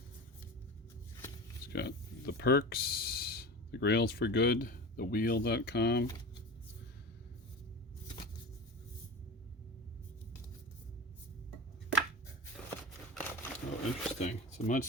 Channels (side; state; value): both; normal; correlation 0.30